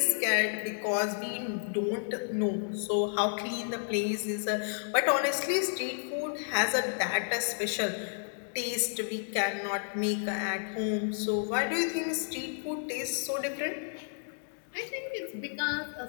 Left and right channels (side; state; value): right; silent; digital silence